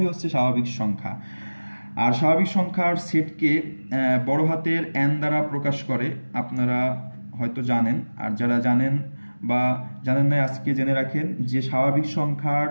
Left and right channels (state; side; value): inverted; both; correlation -1.00